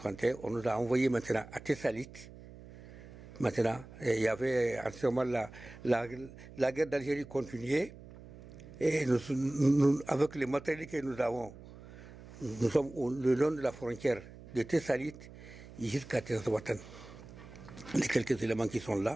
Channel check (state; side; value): noise; right; hum, 17 dB below the sound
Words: on nous a envoyé maintenant à Tessalit. Maintenant, il y avait en ce moment-là, la guerre d'Algérie continuait. Et avec les matériels que nous avons, nous sommes le long de la frontière de Tessalit jusqu'à Tessouatan. Les quelques éléments qui sont